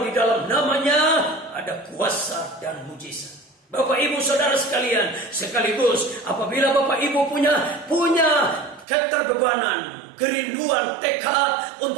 di dalam namanya ada kuasa dan mujizat. Bapak Ibu Saudara sekalian, sekaligus apabila Bapak Ibu punya keterbebanan, kerinduan, tekad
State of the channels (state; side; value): drops out; left; at 8.8 s